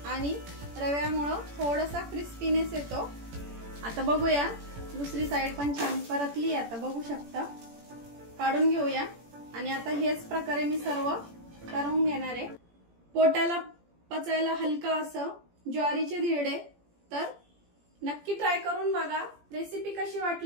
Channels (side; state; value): left; late; 17 ms